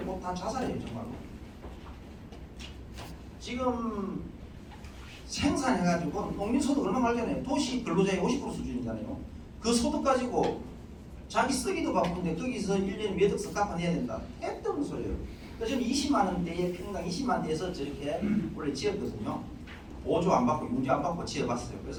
꼭 다 자살해요 정말로. 지금 생산해가지고 농민소득 얼마 말잖아요. 도시 근로자의 50% 수준이잖아요. 그 소득 가지고 자기 쓰기도 바쁜데 거기서 1년에 몇 억씩 갚아내야 된다. 택도 없는 소리예요. 그래서 저는 20만 원대에 평당 20만 원대에서 저렇게 원래 지었거든요. 보조 안 받고 융자 안 받고 지어봤어요.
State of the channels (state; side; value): identical; both; correlation 1.00